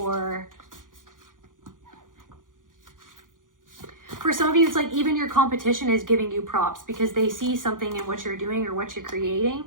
for some of you, it's like even your competition is giving you props because they see something in what you're doing or what you're creating.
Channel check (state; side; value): late; left; 0.89 ms